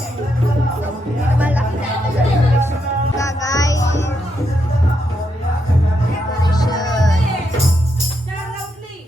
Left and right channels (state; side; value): normal; both; correlation 0.81